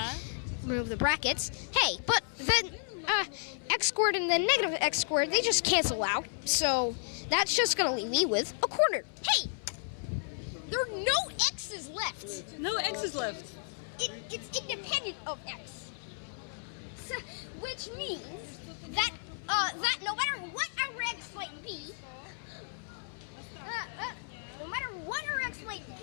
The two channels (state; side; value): silent; right; 56 dB below the other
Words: remove the brackets. Hey, but then x squared and then negative x squared, they just cancel out. So that's just going to leave me with a quarter. Hey, there are no x's left. No x's left. It's independent of x. So, which means that that no matter what our x might be, no matter what our x might